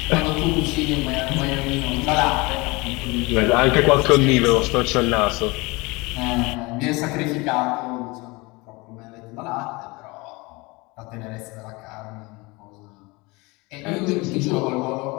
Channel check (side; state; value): right; quieter; 24.8 dB